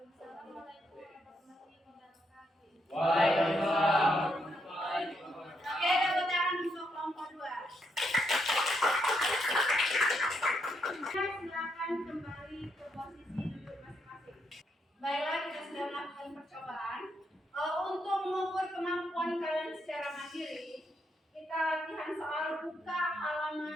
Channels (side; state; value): both; normal; correlation 0.78